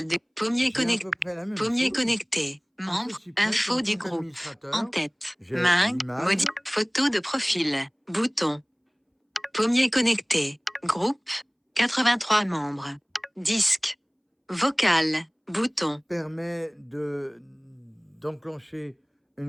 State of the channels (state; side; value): identical; both; correlation 1.00